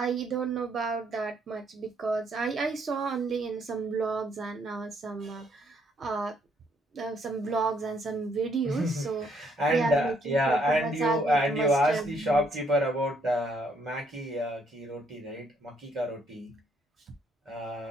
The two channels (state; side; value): normal; both; correlation 0.70